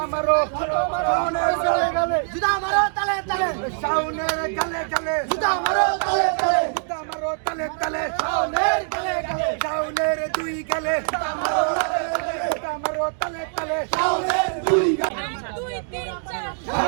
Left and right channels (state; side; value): silent; left; digital silence